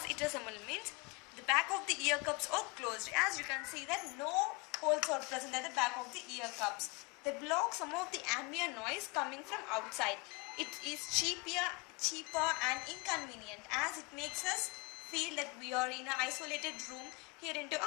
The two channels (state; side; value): quieter; right; 28.2 dB